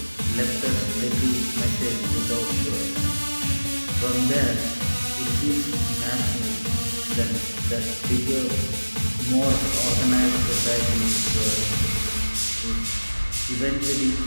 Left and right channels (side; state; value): both; inverted; correlation -1.00